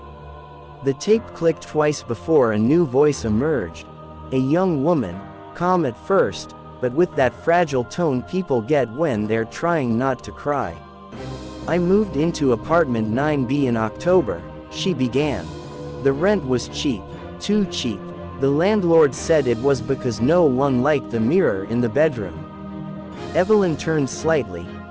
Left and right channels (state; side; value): identical; both; correlation 1.00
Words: The tape clicked twice before a new voice emerged. A young woman, calm at first, but with that fragile tone people get when they're trying not to cry. I moved into apartment 9B in October, she began. The rent was cheap, too cheap. The landlord said it was because no one liked the mirror in the bedroom. Evelyn turned slightly,